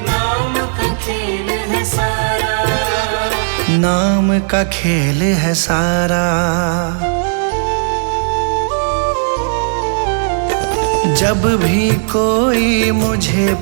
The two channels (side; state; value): left; silent; digital silence